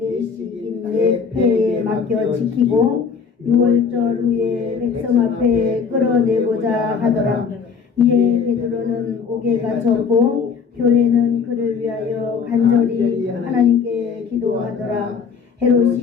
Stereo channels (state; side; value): quieter; right; 6.0 dB